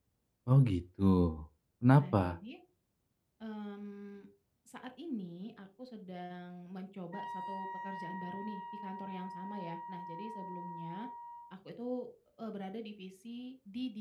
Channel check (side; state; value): both; identical; correlation 1.00